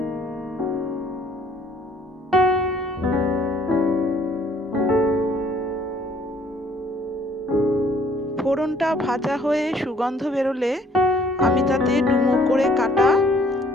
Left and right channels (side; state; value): both; normal; correlation 0.61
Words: ফোড়নটা ভাজা হয়ে সুগন্ধ বেরোলে আমি তাতে ডুমো করে কাটা